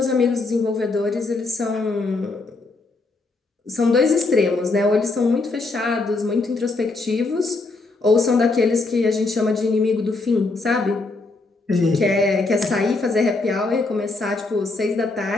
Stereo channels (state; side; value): quieter; right; 3.5 dB